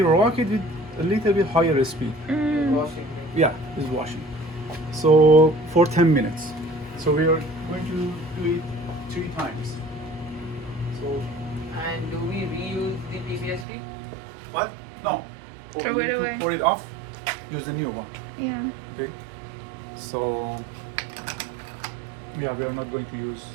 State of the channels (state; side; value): drops out; left; at 13.7 s